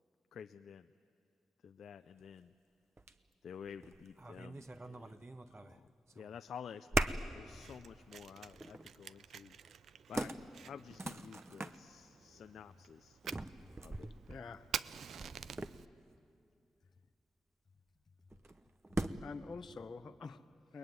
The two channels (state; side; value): normal; both; correlation 0.83